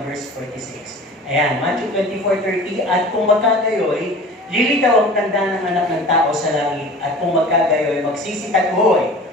verse 46. Ayan, Matthew 24:30, at kung magkagayoy, lilitaw ang tanda ng anak ng tao sa langit, at kung magkagayoy, magsisitagoy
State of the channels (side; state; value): both; normal; correlation 0.41